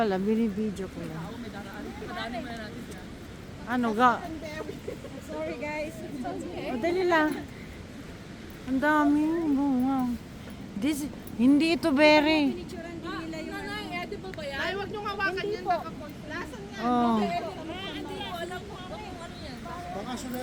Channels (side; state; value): both; identical; correlation 1.00